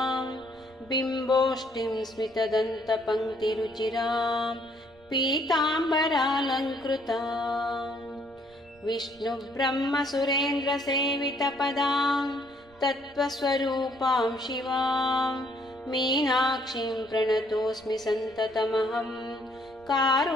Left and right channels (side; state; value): right; noise; rumble, 28 dB below the sound